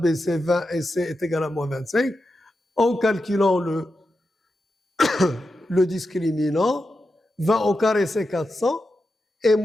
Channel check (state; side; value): normal; both; correlation 0.89